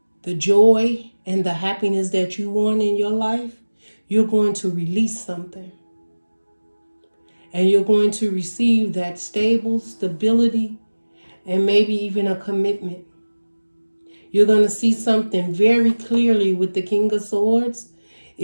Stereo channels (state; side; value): inverted; both; correlation -1.00